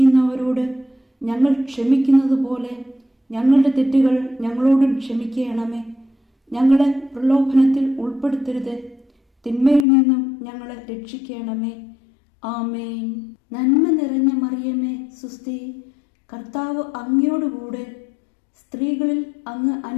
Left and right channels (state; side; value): drops out; right; at 9.9 s